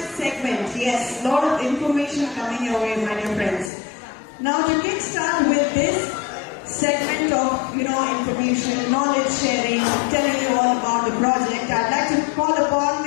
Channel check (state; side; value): drops out; right; at 3.7 s